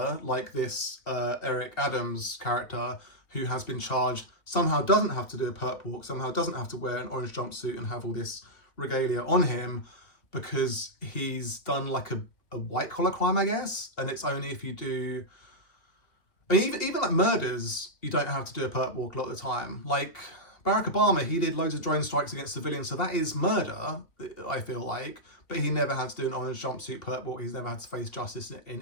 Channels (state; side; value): late; right; 2.5 ms